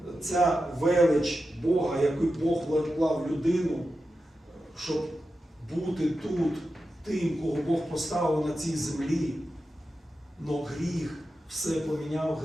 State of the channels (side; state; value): both; normal; correlation 0.91